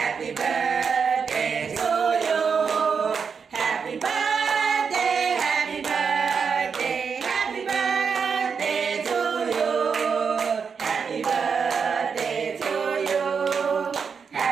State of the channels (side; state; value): left; quieter; 6.0 dB